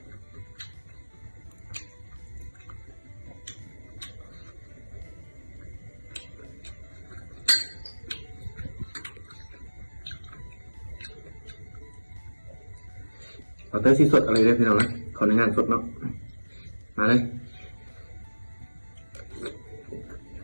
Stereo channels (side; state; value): both; inverted; correlation -1.00